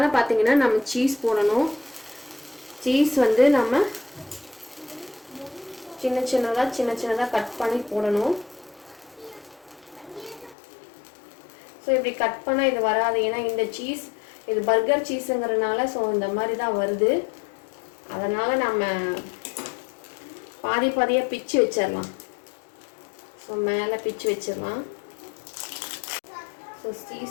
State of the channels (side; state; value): right; drops out; at 10.6 s